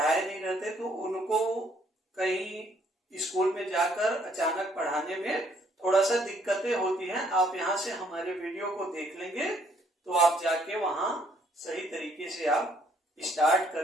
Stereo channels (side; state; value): both; normal; correlation 0.66